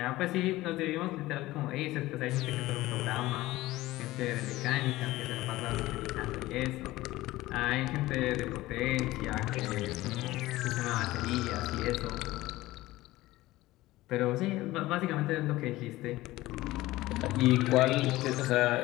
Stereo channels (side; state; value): right; quieter; 17.8 dB